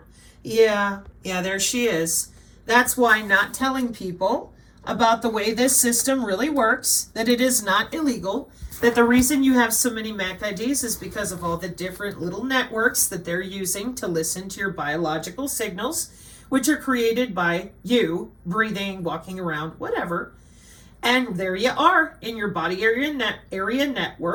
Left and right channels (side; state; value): both; identical; correlation 1.00